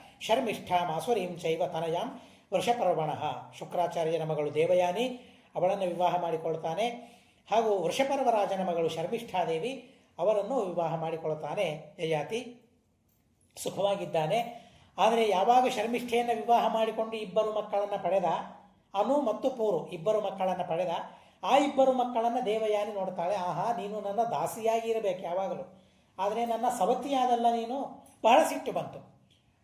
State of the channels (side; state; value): both; identical; correlation 1.00